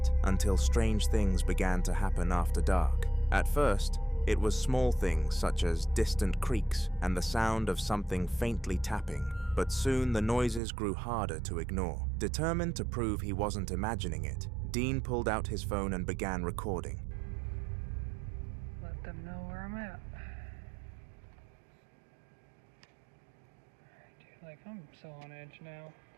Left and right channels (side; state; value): left; drops out; at 10.6 s